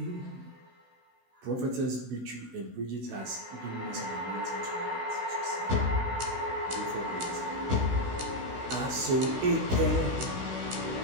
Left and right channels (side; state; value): left; late; 16 ms